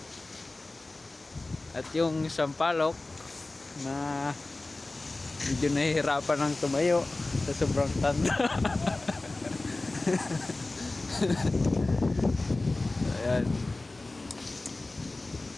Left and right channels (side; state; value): right; quieter; 3.1 dB